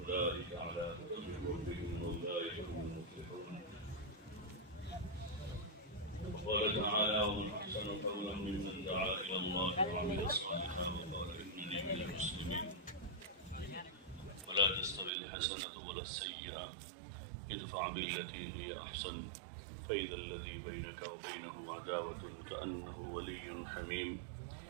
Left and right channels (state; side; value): drops out; left; at 15.1 s